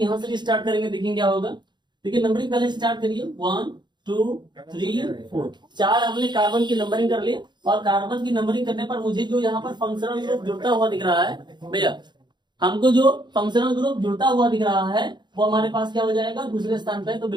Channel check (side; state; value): left; late; 0.21 ms